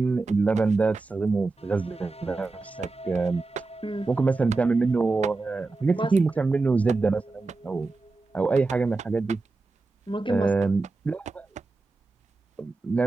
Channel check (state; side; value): quieter; left; 3.6 dB